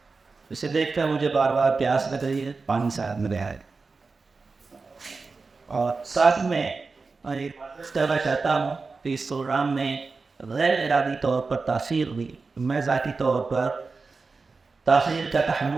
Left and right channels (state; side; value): quieter; left; 4.2 dB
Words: اسے دیکھ کر مجھے بار بار پیاس لگ رہی ہے. پانی ساتھ میں رہا ہے اور ساتھ میں کہنا چاہتا ہوں کہ اس پروگرام میں غیر ارادی طور پر تاثیر ہوئی. میں ذاتی طور پر تاخیر کا